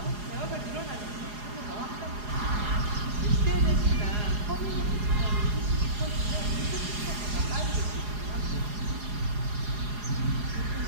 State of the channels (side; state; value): left; late; 4.8 ms